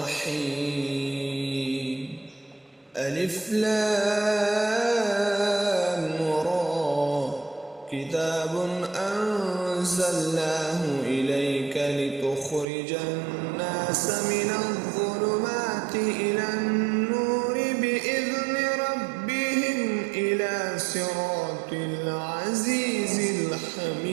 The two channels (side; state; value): left; drops out; at 12.7 s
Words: ألف لام را كتاب أنزلناه إليك لتخرج الناس من الظلمات إلى النور بإذن ربهم إلى صراط العزيز